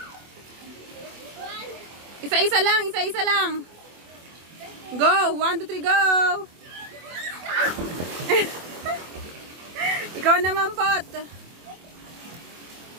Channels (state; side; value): late; left; 24 ms